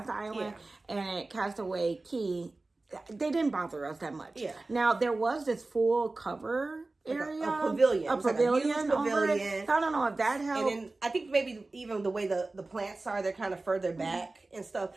island, and at Castaway Cay, they didn't bother us that much. Yeah. Now there was this full cover area, a pavilion, over it. So I don't know if that helped. And then I think maybe even the way the plants are, they're kind of further back and stuff.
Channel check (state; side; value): quieter; left; 3.2 dB